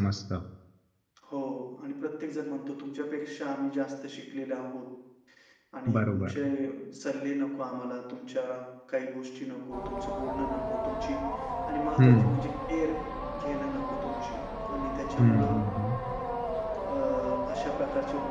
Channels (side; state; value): both; identical; correlation 1.00